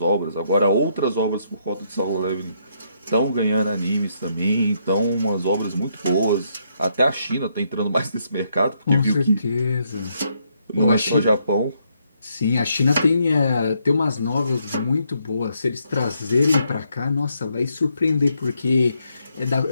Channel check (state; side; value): inverted; both; correlation -0.75